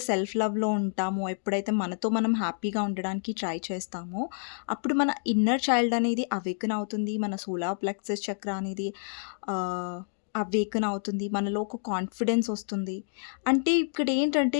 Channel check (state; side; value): silent; right; digital silence